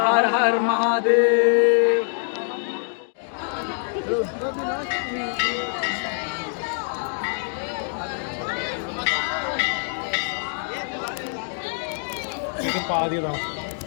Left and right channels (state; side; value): silent; right; 55 dB below the other